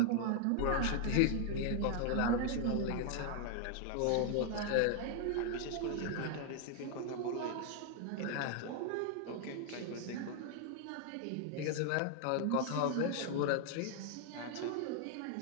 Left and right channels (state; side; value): different; both; correlation 0.00